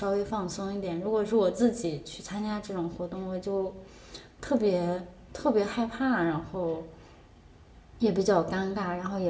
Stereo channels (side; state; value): both; identical; correlation 1.00